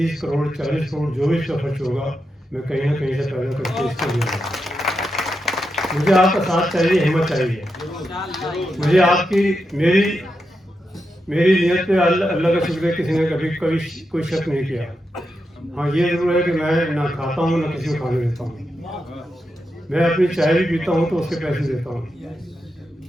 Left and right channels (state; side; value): normal; both; correlation 0.86